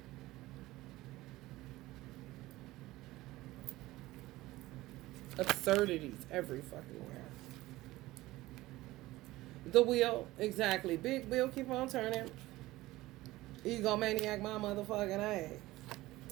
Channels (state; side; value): quieter; left; 18.0 dB